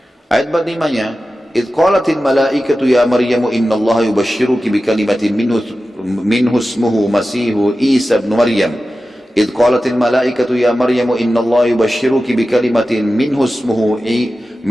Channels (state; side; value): normal; both; correlation 0.94